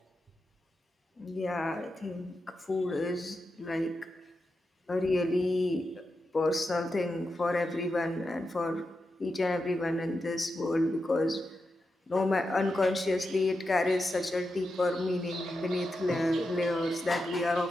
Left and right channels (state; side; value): normal; both; correlation 0.88